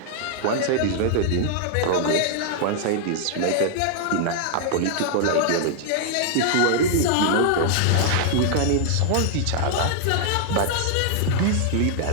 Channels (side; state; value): both; different; correlation -0.01